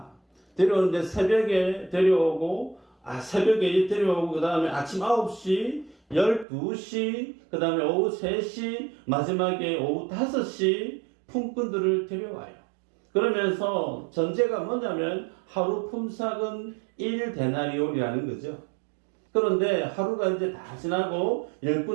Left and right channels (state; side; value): drops out; left; at 6.5 s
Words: 데려오는데 새벽에 데려오고 그 다음에 아침 9시, 12시, 그 다음에 오후 3시, 마지막에 오후 5시 품꾼들을 데려와요. 그러면서 전제가 뭐냐면 하루 품삯은 1데나리온이라는 거죠. 그런데 하루가 이제 다 지나고